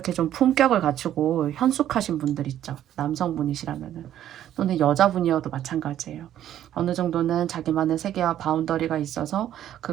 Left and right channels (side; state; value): left; quieter; 11.5 dB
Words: 좀 품격을 갖추고 현숙하신 분들 있죠. 남성분이시라면은. 또는 여자분이어도 마찬가지예요. 어느 정도는 자기만의 세계와 바운더리가 있어서